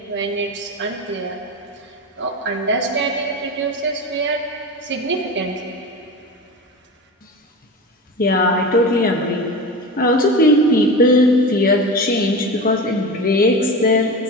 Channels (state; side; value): normal; both; correlation 0.27